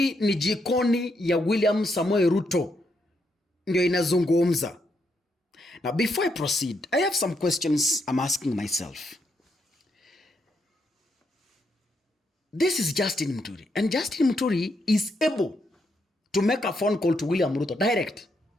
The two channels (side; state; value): both; normal; correlation 0.79